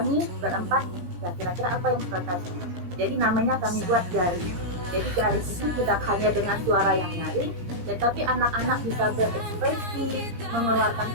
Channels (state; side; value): late; left; 17 ms